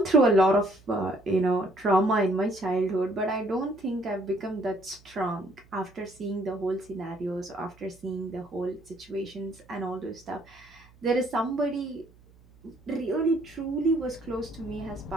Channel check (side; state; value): right; noise; hum, 27 dB below the sound